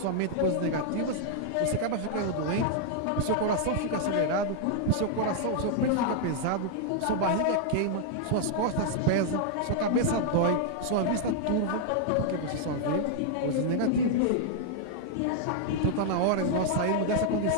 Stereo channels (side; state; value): both; different; correlation -0.01